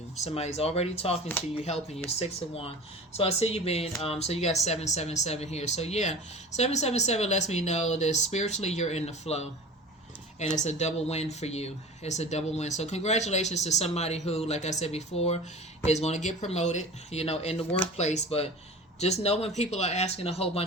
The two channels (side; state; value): both; normal; correlation 0.36